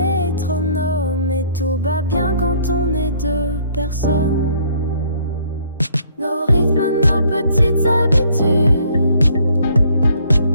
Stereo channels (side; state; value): both; inverted; correlation -0.62